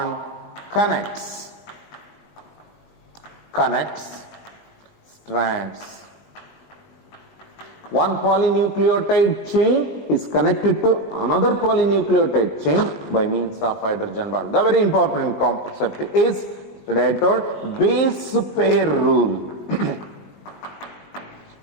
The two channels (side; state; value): right; late; 19 ms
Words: connects strands. One polynucleotide chain is connected to another polynucleotide chain by means of hydrogen bond. The very important concept is, today I told, base pair rule.